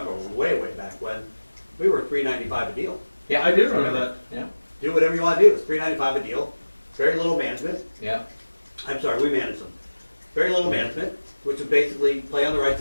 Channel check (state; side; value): inverted; both; correlation -1.00